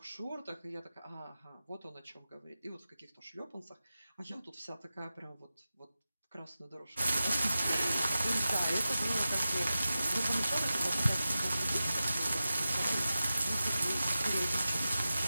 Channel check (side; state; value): both; inverted; correlation -0.93